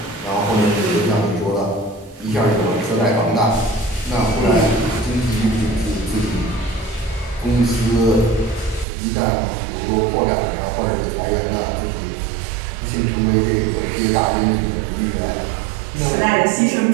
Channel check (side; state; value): left; drops out; at 8.8 s